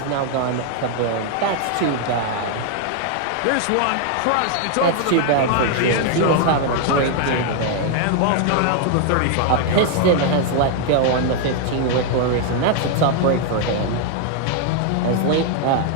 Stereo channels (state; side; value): different; both; correlation 0.00